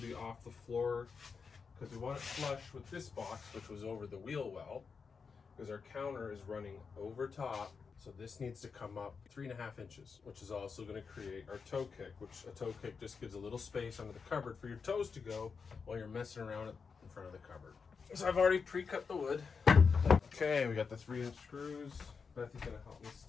off the floor because we want it flush with this box, which was over the wheel well, because our counter is running over top. So this needs to come up 3.5 inches, which is also going to create our toe kick, which a toe kick just gives a little space under the cupboard for your toes to go while you're messing around in front of the cupboard. So I've already pre-cut the wood. Okay, we got the 3-inch screws. Bethy's going to help me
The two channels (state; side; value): quieter; right; 5.4 dB